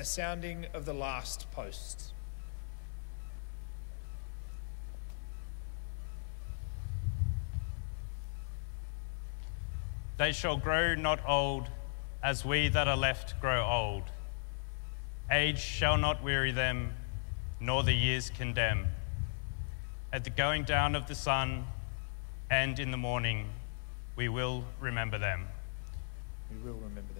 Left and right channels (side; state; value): right; silent; digital silence